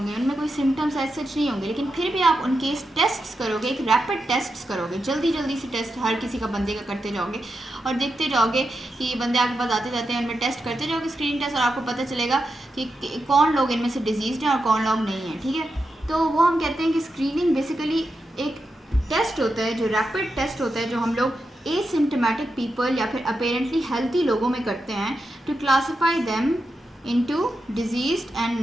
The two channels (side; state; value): both; normal; correlation 0.87